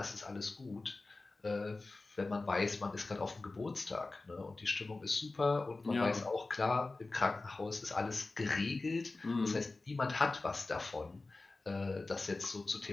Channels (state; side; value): quieter; right; 3.4 dB